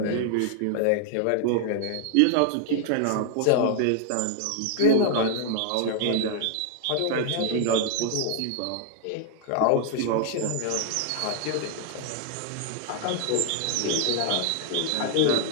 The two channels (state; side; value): different; both; correlation 0.00